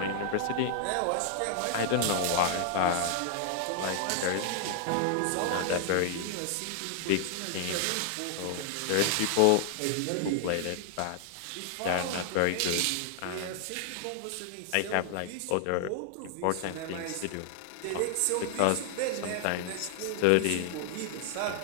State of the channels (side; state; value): both; different; correlation 0.00